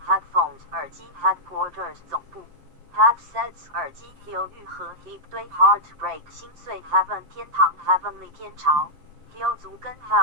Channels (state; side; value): late; left; 7.5 ms